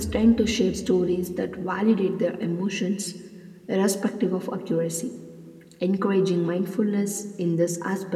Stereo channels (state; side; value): identical; both; correlation 1.00